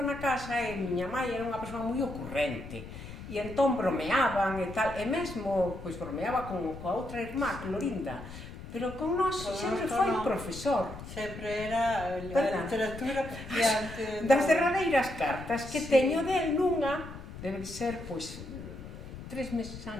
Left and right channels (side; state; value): left; noise; rumble, 12 dB below the sound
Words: casa e miña mãe era unha persoa moi ocurrente. E entón bromeaban e tal, e mesmo, pois bromeaba coa outra irmá, Clorinda, pero con nós sempre foi profesor. Sempre era a literatura diante. Das derradeiras cartas que teño del nunha, debe ser, pois, 3 meses